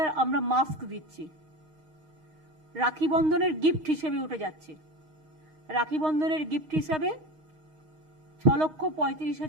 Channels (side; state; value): left; late; 6.4 ms